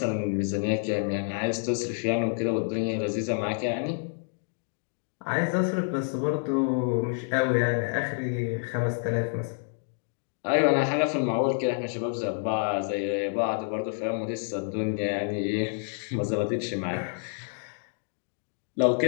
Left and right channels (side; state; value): right; silent; digital silence